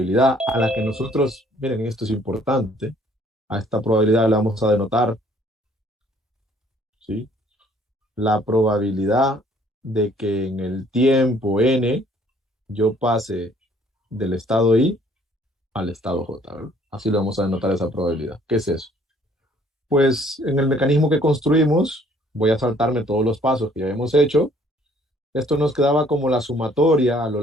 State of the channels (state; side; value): normal; both; correlation 0.60